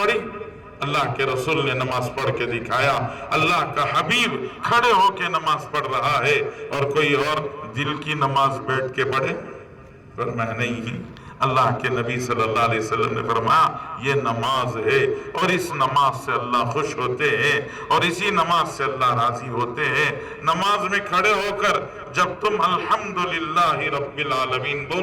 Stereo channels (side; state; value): both; identical; correlation 1.00